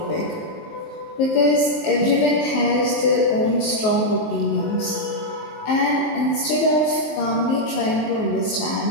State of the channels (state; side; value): late; right; 19 ms